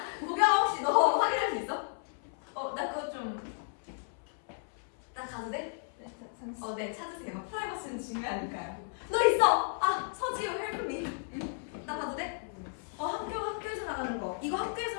보경아 혹시 너 확인할 수 있어? 나 그거 좀. 나 가도 돼? 네, 찾으세요. 프라이버시는 중요하니까요. 너 있어! 서지우 헬프미. 나 가도 돼? 학교에서 나가는 거. 이거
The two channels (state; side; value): silent; right; 55 dB below the other